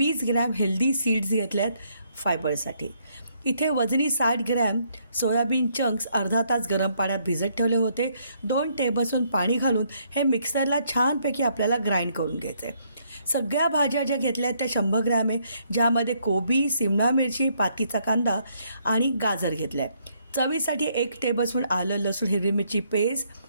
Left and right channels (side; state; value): both; inverted; correlation -0.71